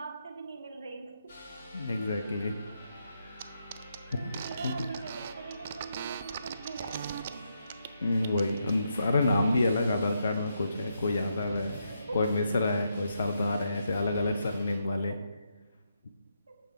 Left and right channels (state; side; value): inverted; both; correlation -0.81